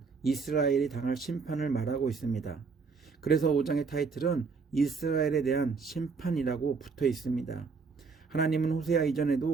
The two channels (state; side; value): quieter; left; 4.8 dB